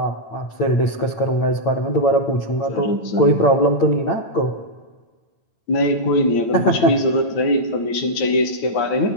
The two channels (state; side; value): late; right; 9.0 ms